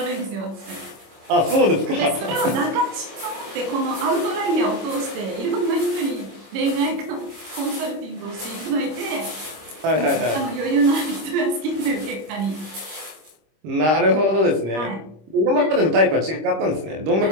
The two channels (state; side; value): late; left; 26 ms